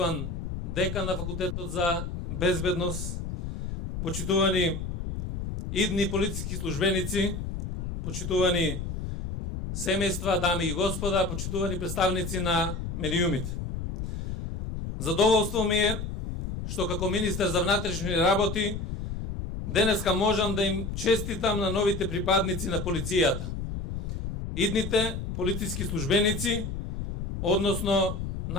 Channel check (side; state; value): left; noise; rumble, 5 dB below the sound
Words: декан на факултетот за безбедност, почитувани идни полициски службеници, почитувани семејства, дами и господа, почитувани представници на медиумите. Задоволство ми е што како министер за внатрешни работи денеска можам да им честитам на новите припадници на полицијата. Идните полициски службеници, односно